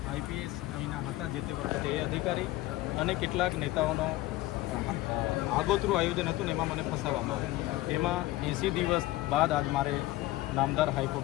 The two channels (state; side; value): quieter; right; 17.4 dB